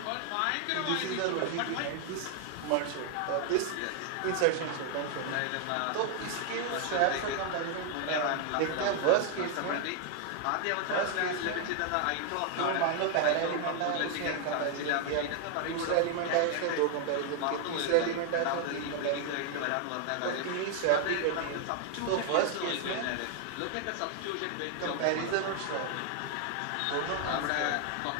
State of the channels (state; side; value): different; both; correlation 0.00